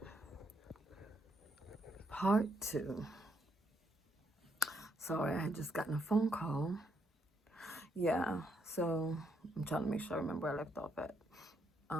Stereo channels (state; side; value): normal; both; correlation 0.75